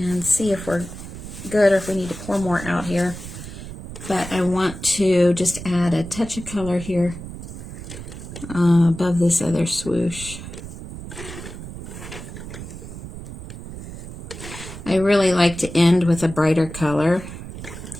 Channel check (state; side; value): noise; right; rumble, 11 dB below the sound